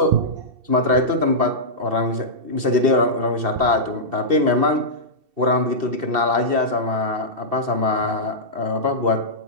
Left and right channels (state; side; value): late; left; 2.7 ms